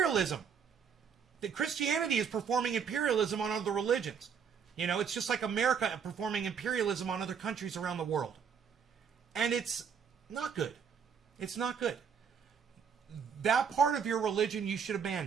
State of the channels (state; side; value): quieter; left; 6.9 dB